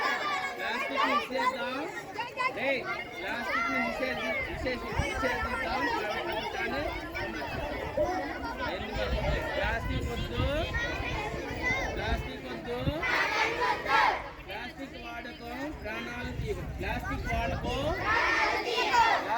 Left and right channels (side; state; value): both; identical; correlation 1.00